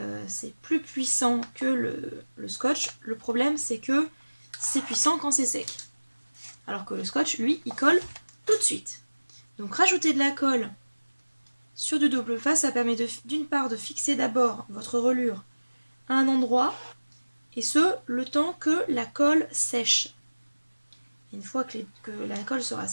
c'est plus puissant que le scotch. Le problème c'est que c'est puissant quand c'est sec. Alors que le scotch, lui, il colle tout de suite. Donc rajouter de la colle sur du double face, ça permet d'une part de fixer d'abord votre reliure à un endroit, et ce, le temps que la colle sèche. Et une fois que la colle sera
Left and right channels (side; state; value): both; inverted; correlation -1.00